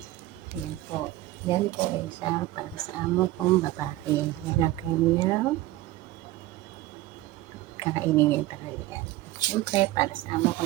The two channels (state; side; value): quieter; left; 16.5 dB